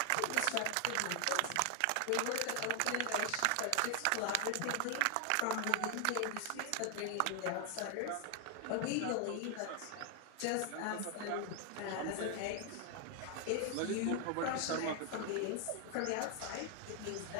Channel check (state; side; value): different; both; correlation 0.00